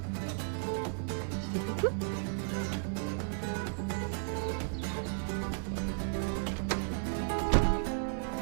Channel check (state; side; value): silent; left; digital silence